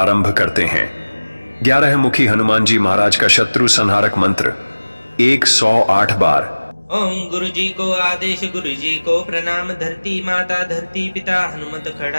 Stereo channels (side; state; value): both; inverted; correlation -1.00